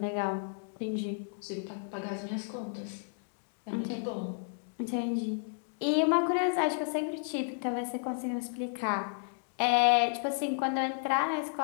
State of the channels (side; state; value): right; silent; digital silence